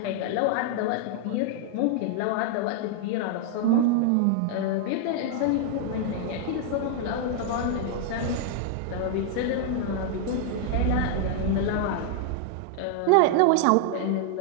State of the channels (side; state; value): both; different; correlation -0.01